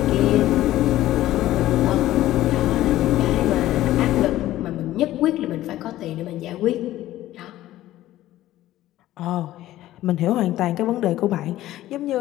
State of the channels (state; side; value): quieter; right; 14.7 dB